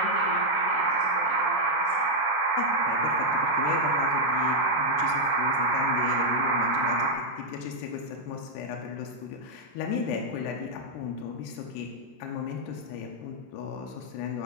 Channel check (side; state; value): right; late; 13 ms